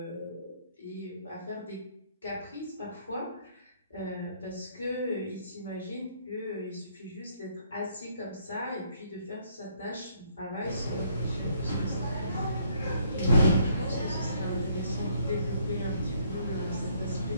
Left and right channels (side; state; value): both; inverted; correlation -0.67